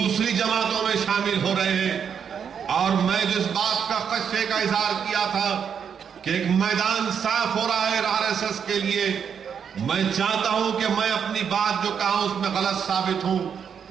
जमातों में शामिल हो रहे हैं। और मैं जिस बात का खदशे का इजहार किया था कि एक मैदान साफ हो रहा है आरएसएस के लिए, मैं चाहता हूं कि मैं अपनी बात जो कहा उसमें गलत साबित हूं,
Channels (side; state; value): left; quieter; 7.4 dB